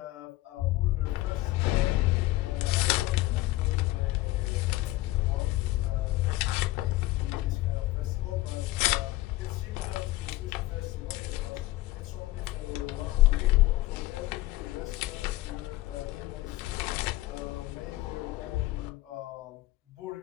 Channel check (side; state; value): right; quieter; 17.5 dB